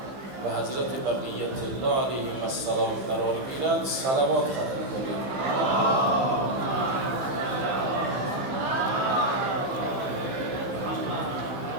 و حضرت بقیت الله علیهم السلام قرار گیرد. صلوات ختم کنید.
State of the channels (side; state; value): left; late; 15 ms